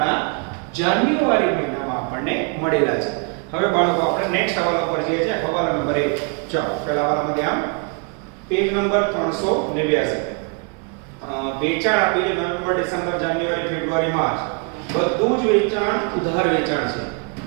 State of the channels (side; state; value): left; quieter; 36.9 dB